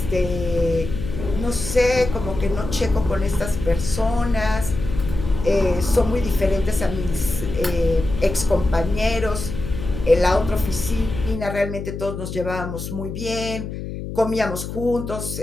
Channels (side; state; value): left; noise; hum, 7 dB below the sound